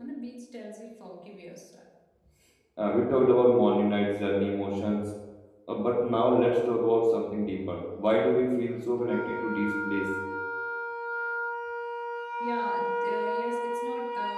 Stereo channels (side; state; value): both; identical; correlation 1.00